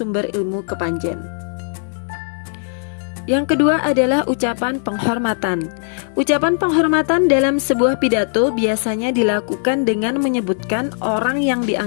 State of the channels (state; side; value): silent; right; digital silence